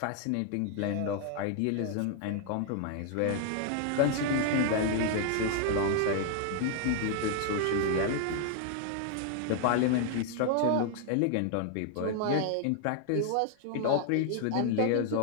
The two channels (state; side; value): different; both; correlation 0.00